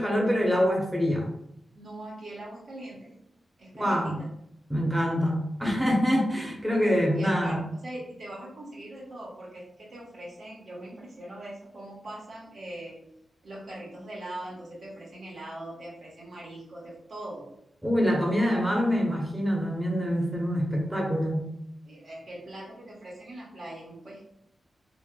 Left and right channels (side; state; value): both; normal; correlation 0.92